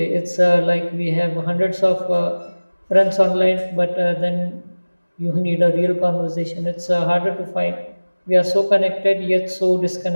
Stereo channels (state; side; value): inverted; both; correlation -1.00